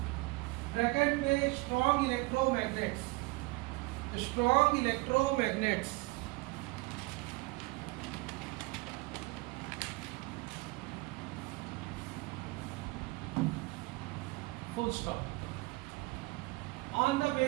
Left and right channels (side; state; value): left; quieter; 24.2 dB